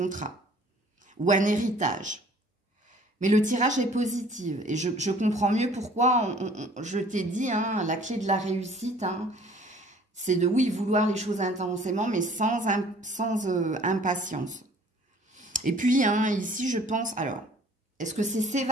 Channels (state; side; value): normal; both; correlation 0.53